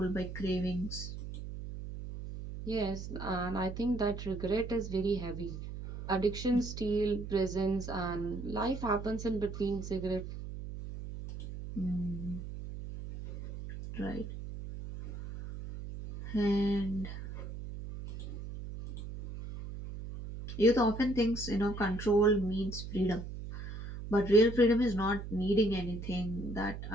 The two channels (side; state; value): right; noise; hum, 9 dB below the sound